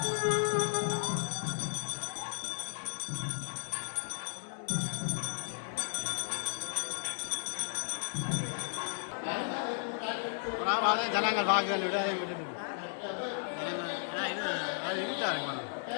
ஜனங்கள் வாக்குகள் இது அது இருக்காருங்க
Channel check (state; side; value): silent; right; digital silence